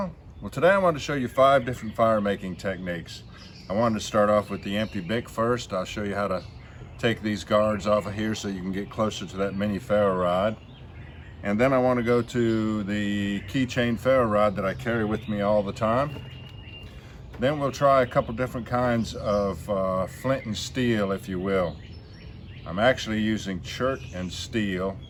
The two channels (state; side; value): identical; both; correlation 1.00